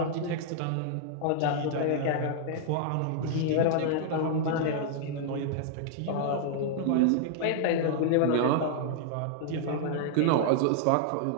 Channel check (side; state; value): both; different; correlation -0.01